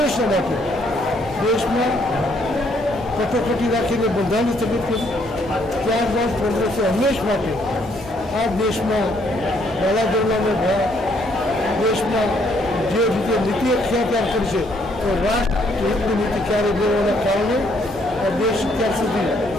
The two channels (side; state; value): both; normal; correlation 0.69